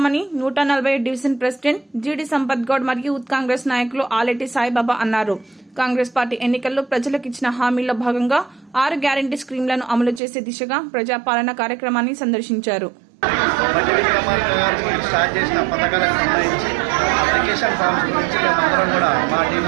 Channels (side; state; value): left; drops out; at 10.2 s